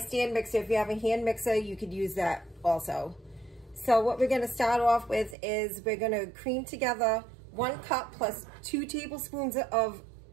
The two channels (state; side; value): drops out; left; at 5.4 s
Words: mixer. If you have a hand mixer you could use that also. So what we're going to start off with is we're going to cream together 1 cup plus 2 tablespoons of